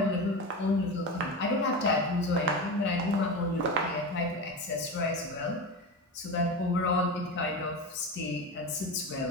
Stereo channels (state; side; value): normal; both; correlation 0.23